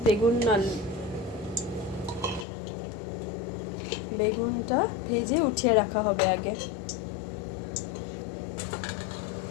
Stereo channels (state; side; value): drops out; right; at 2.5 s